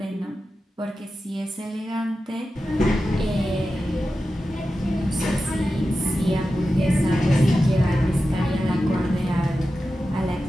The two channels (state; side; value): normal; both; correlation 0.92